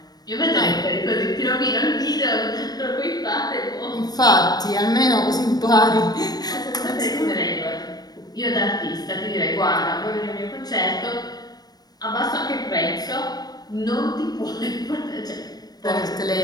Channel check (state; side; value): late; right; 0.19 ms